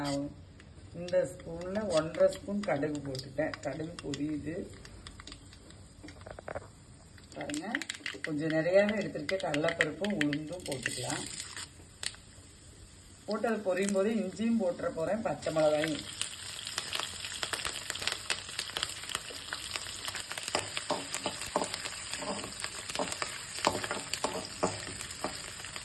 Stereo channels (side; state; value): both; identical; correlation 1.00